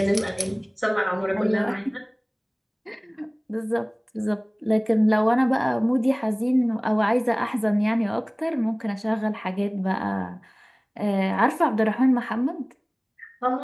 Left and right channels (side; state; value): both; identical; correlation 1.00